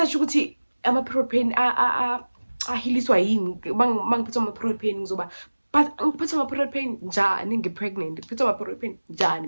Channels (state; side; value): inverted; both; correlation -1.00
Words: ukuthi ama protein ahiliswa yini mangiphethe ama protein ngizoba but ngiphethe ama protein njani ngipregnant ngiphethe ama protein njani